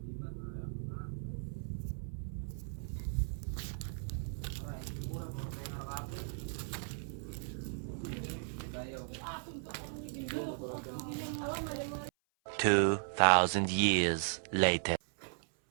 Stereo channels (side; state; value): left; silent; 53 dB below the other